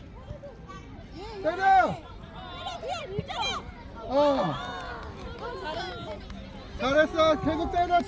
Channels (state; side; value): identical; both; correlation 1.00